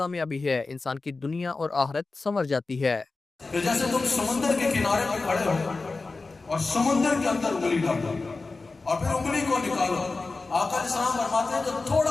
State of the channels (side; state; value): right; quieter; 3.7 dB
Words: ہے، انسان کی دنیا اور آخرت سنور جاتی ہے۔ کہ جیسے تم سمندر کے کنارے پہ کھڑے ہو اور سمندر کے اندر انگلی ڈالو اور پھر انگلی کو نکالو، آقا علیہ السلام فرماتے ہیں جو